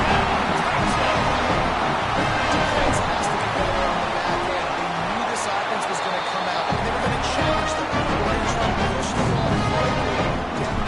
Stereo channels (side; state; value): both; identical; correlation 1.00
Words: Defense has to be better on the back end. They knew this offense was going to come out, and they were going to challenge them. They were going to try to push the ball quickly down